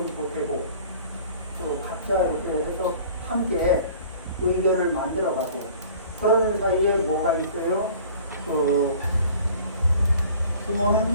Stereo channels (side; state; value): both; inverted; correlation -0.48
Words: 보태고 또 각자 이렇게 해서 함께 의견을 만들어가고 그러는 사이에 뭐가 있어요?